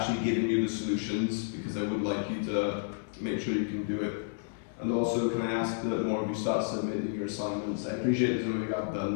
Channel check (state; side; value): silent; right; 57 dB below the other